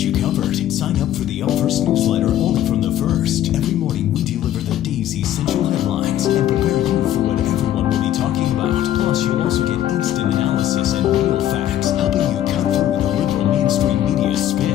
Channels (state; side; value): quieter; right; 12.0 dB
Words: covered. Sign up for the Up First newsletter only from The First. Every morning we deliver the day's essential headlines and prepare you for what everyone will be talking about. Plus, you'll also get instant analysis and real facts, helping you cut through the liberal mainstream media